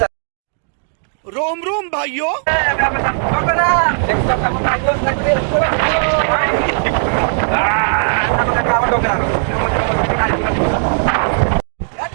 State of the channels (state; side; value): silent; left; digital silence